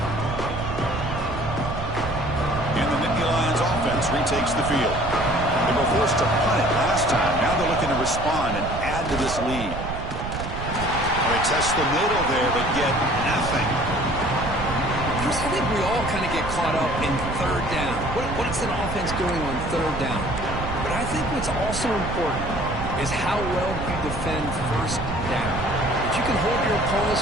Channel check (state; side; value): noise; right; rumble, 6 dB below the sound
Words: And the Nittany Lions offense retakes the field. They were forced to punt it last time. Now they're looking to respond and add to this lead. They test the middle there, but get nothing. Chris, I think we all kind of get caught up in 3rd down. What is an offense doing on 3rd down? But I think what's also important is how well you defend 1st down. If you can hold your